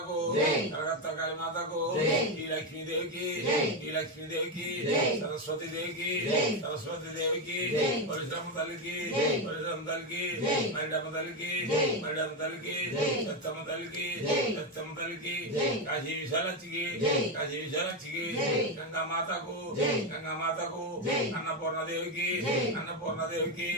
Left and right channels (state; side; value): normal; both; correlation 0.09